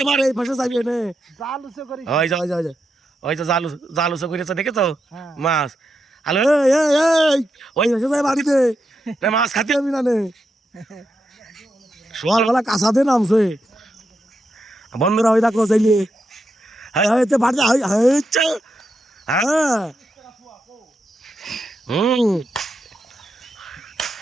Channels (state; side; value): normal; both; correlation 0.85